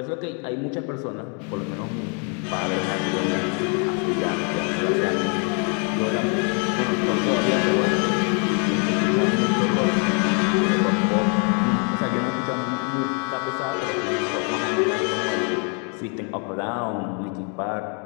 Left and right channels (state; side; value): quieter; right; 37.9 dB